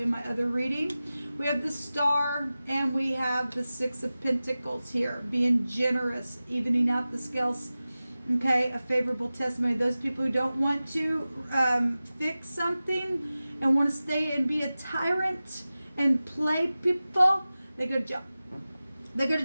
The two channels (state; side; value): inverted; both; correlation -0.96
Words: my other reading. We have the Star, and we have the Six of Pentacles here, being generous, evening out the scales. Okay, a favorable testimony. Those people who don't want to fix something and want to stay and be a tyrant and play people, they go to jail. They go to